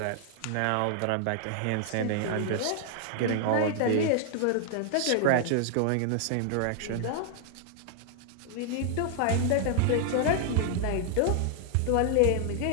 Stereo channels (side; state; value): both; different; correlation 0.00